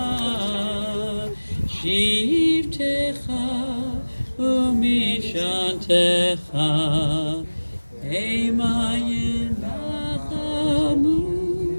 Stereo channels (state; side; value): inverted; both; correlation -1.00